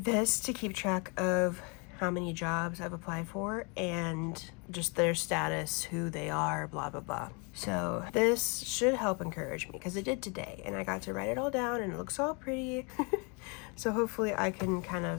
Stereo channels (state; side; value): quieter; right; 32.7 dB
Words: this to keep track of how many jobs I've applied for and just their status, who they are, blah, blah, blah. So this should help encourage me, because it did today, and I got to write it all down and it looks all pretty. So hopefully I can kind